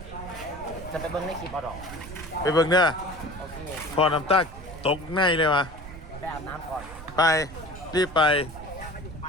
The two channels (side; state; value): right; noise; rumble, 14 dB below the sound